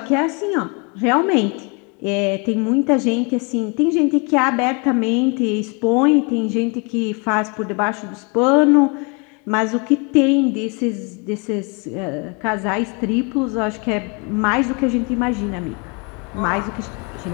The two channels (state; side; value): quieter; right; 32.5 dB